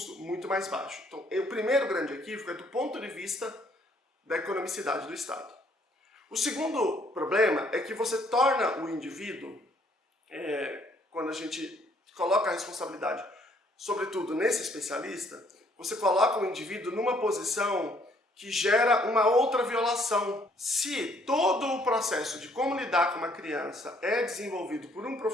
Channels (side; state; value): both; normal; correlation 0.65